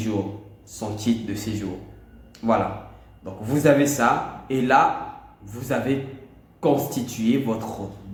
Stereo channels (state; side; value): identical; both; correlation 1.00